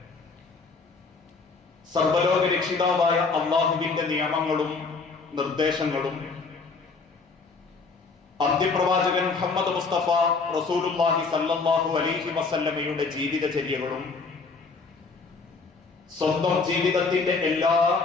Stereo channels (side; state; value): right; quieter; 4.4 dB